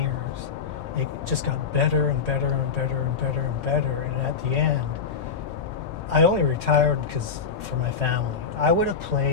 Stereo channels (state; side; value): quieter; right; 6.0 dB